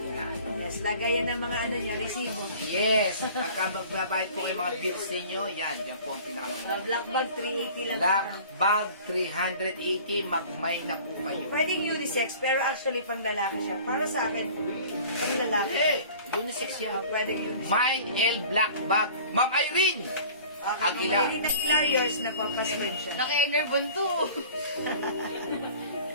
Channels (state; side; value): inverted; both; correlation -0.45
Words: Yes, lagayan ng mga ano niya, resibo. Yes. Pagka magbabayad po kayo mga bills ninyo, yan. Yan po ang pinakamaganda. Black bag, 380 lang. Black bag, 380. Magmay na po kayo. Pwedeng unisex, pero actually pang lalaki siya. Para sa akin, pang lalaki. Eh, unisex yan. Pwedeng unisex. Mine L Black Bag. Ma'am Irene! Okay, Aguila. kung may Hilarious na papasman siya. Naka-enervon to.